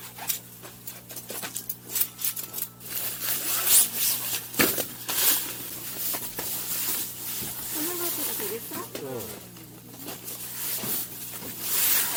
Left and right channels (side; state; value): both; identical; correlation 1.00